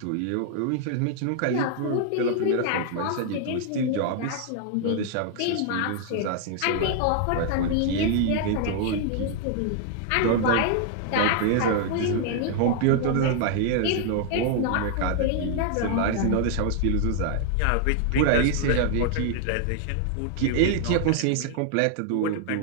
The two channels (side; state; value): both; different; correlation 0.00